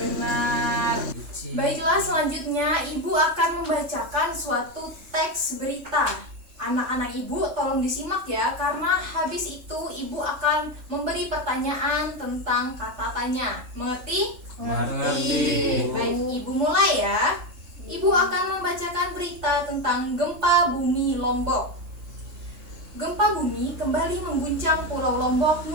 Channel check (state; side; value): late; left; 3.3 ms